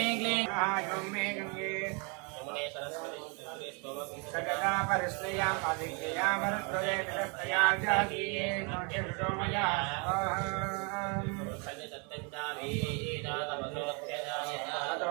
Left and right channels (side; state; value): left; quieter; 33.8 dB